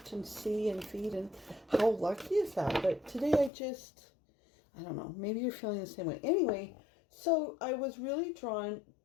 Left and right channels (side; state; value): right; drops out; at 3.5 s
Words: and see and feed, and how lucky is that? But today I don't know. Maybe you're feeling the same way. Anyway, so I was really drawn